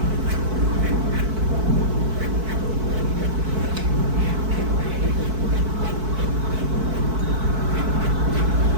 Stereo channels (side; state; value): left; late; 4.6 ms